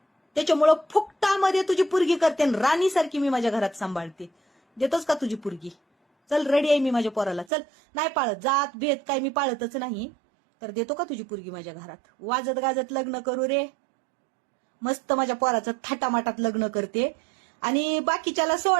त्याच्यामुळं फुकटामध्ये तुझी पोरगी करते, राणीसारखी मी माझ्या घरात सांभाळते. देतोस का तुझी पोरगी? चल, रेडी आहे मी माझ्या पोराला. चल, नाही पाळत जात भेद, काय मी पाळतच नाही. तर देतो का तुझी पोरगी माझ्या घरात? वाजत गाजत लग्न करू रे, मस्त माझ्या पोराचं थाटामाटात लग्न करते. आणि बाकीच्याला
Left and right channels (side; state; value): left; drops out; at 7.5 s